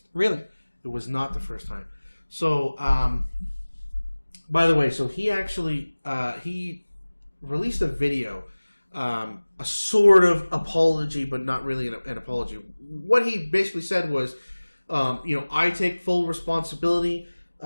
Really? It was not the first time. So, by the way, so he actually, he released a video, a sort of apology, but not really an apology. What he basically said was, I take full responsibility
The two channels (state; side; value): inverted; both; correlation -1.00